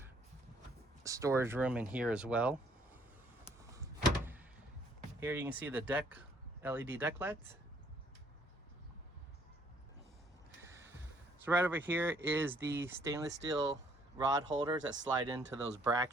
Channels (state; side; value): normal; both; correlation 0.65